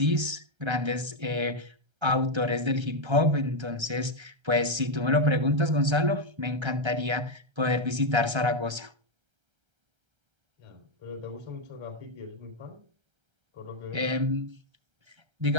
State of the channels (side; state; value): left; late; 1.3 ms